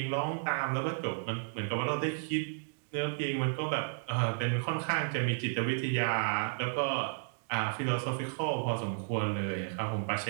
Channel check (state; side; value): silent; left; digital silence